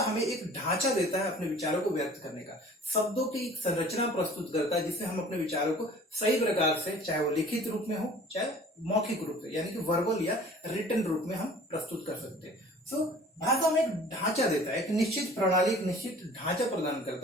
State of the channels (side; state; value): both; normal; correlation 0.48